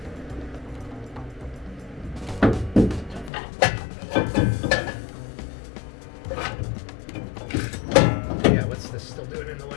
Yeah, what's this still doing in the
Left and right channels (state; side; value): drops out; right; at 3.3 s